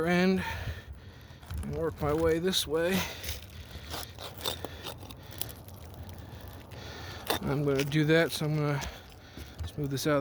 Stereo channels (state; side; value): identical; both; correlation 1.00